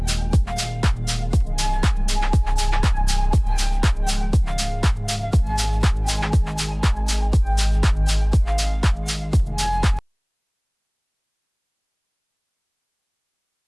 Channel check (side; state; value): both; identical; correlation 1.00